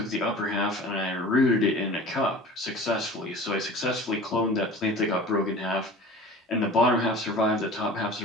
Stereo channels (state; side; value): normal; both; correlation 0.40